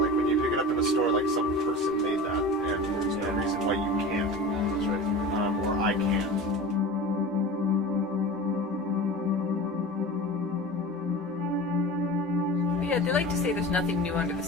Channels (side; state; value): both; normal; correlation 0.34